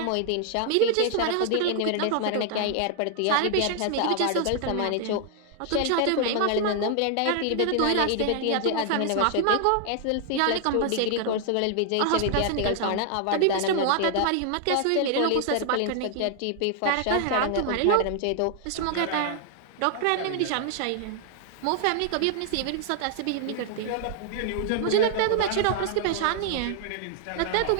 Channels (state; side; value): different; both; correlation 0.00